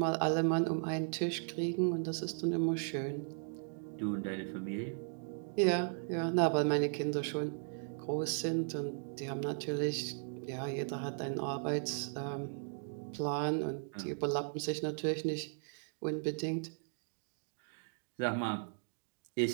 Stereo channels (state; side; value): silent; left; digital silence